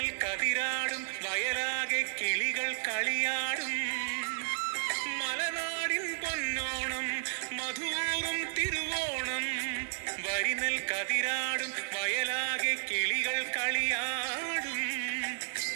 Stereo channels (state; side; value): silent; left; digital silence